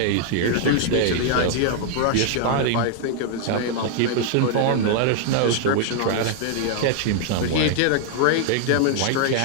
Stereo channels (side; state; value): both; different; correlation 0.00